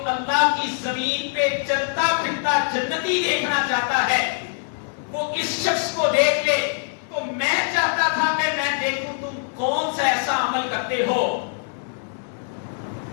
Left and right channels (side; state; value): right; silent; 63 dB below the other